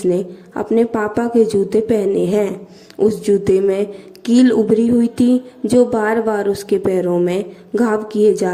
अपने पापा के जूते पहने हैं। उस जूते में कील उभरी हुई थी जो बार बार उसके पैरों में घाव किए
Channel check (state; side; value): identical; both; correlation 1.00